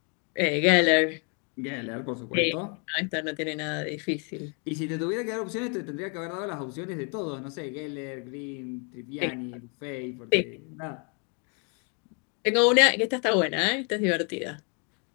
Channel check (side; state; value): right; quieter; 36.7 dB